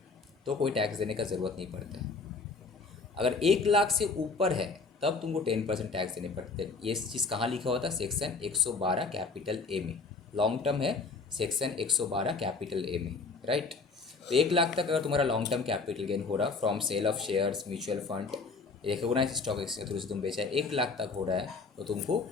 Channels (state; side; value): quieter; right; 4.3 dB